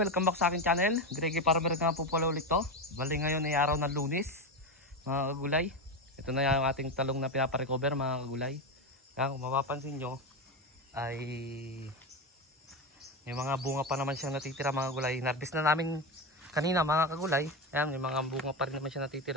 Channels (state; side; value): normal; both; correlation 0.16